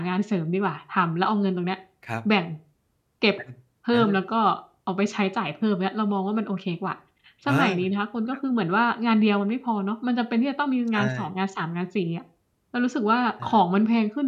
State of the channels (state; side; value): identical; both; correlation 1.00